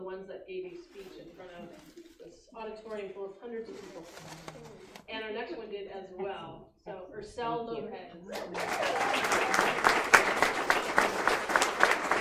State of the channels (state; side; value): identical; both; correlation 1.00